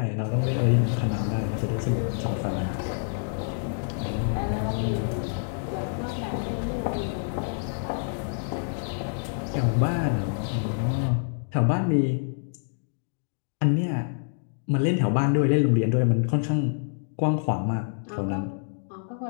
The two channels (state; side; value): silent; right; digital silence